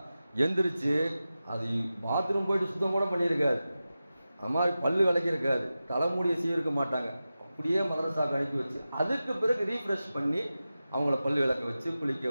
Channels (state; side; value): inverted; both; correlation -0.94